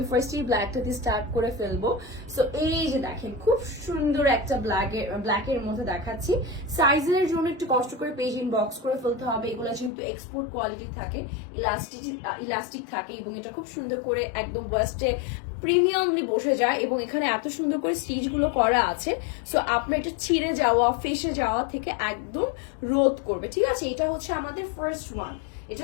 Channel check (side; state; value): right; drops out; at 9.9 s